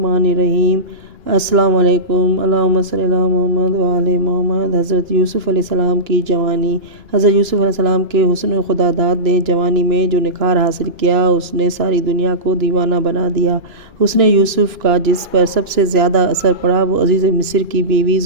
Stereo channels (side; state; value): left; late; 2.9 ms